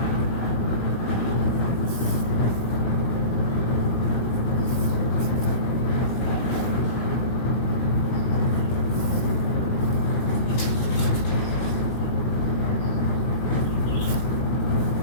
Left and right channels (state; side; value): late; right; 17 ms